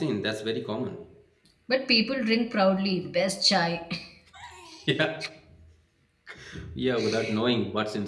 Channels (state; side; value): identical; both; correlation 1.00